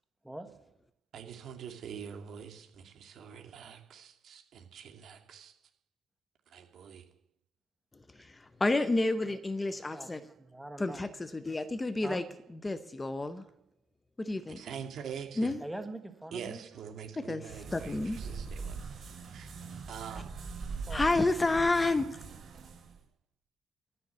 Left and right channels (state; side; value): normal; both; correlation 0.92